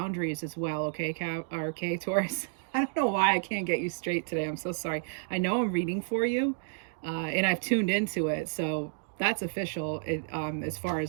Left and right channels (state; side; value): silent; left; digital silence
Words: as well, okay, Taurus? I don't know why I can't get you straight today. I'm so sorry. I know I'm reading for you, and I've tuned into it. So that's official. As far